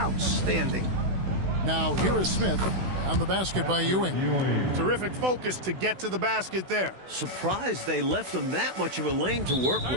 Now here is Smith. On the basket by Ewing. Terrific focus to get to the basket there. Surprised they left him that much of a lane to work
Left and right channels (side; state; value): left; late; 16 ms